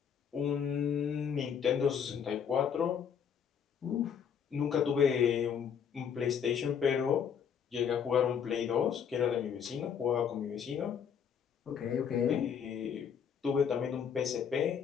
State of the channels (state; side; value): quieter; right; 7.6 dB